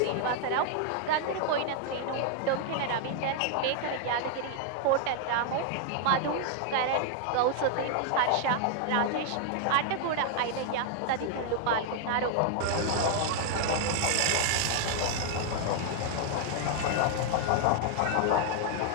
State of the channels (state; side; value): different; both; correlation 0.00